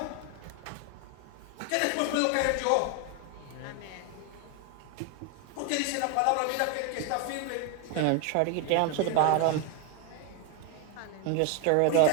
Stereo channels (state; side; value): different; both; correlation 0.01